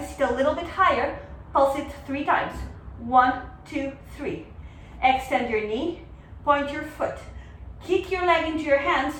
sit a little bit higher. Pulse it 3 times. 1, 2, 3. Extend your knee, point your foot. Kick your leg into your hands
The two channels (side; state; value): both; identical; correlation 1.00